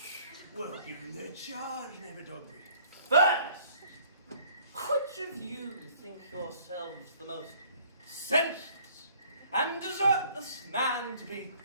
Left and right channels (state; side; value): inverted; both; correlation -0.57